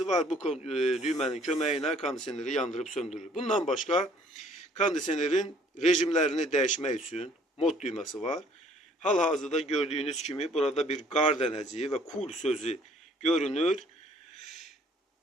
var. Bu düğmenin kömeğiyle kondisyoneri yandırıp söndürür. Bundan başka kondisyonerin rejimlerini değişmek için mod düğmesi var. Hal-hazırda gördüğünüz gibi burada bir qar dənəciyi ve cool sözü görünür.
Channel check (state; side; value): normal; both; correlation 0.59